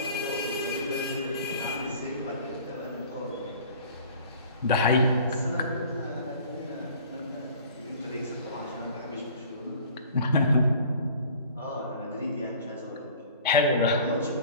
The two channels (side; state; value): both; inverted; correlation -0.48